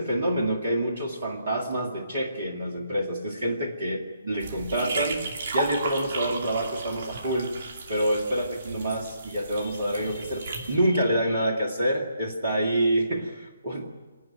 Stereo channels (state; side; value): inverted; both; correlation -0.75